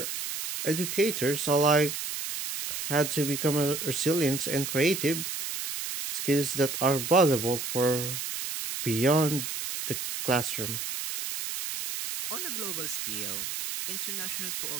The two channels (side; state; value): right; noise; hiss, 5 dB below the sound